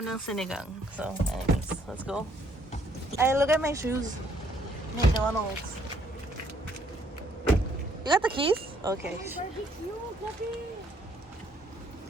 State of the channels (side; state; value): both; normal; correlation 0.67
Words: sinigang. So, anyways, let's go. Ay, look at my shoes. McDonald's. You got the keys? Okay.